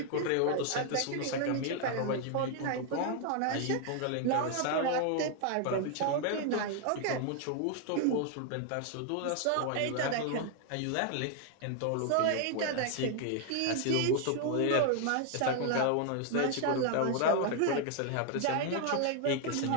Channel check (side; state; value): both; different; correlation 0.00